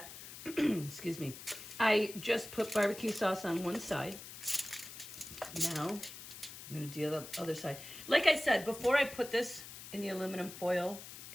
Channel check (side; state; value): left; noise; hiss, 13 dB below the sound